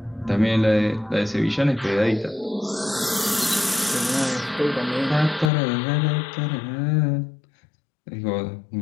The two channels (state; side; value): drops out; right; at 5.5 s